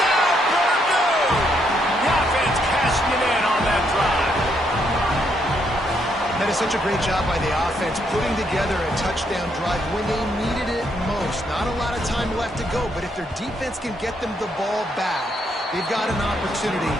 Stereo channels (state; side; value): normal; both; correlation 0.75